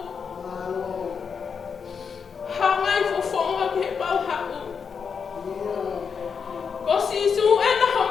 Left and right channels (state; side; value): quieter; right; 6.2 dB